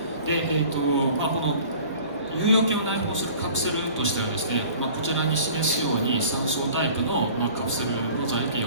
で、この有用菌を内包するカプセルとしてはですね、こちらに示すように3層タイプの、カプセルの材形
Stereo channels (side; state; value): both; inverted; correlation -0.47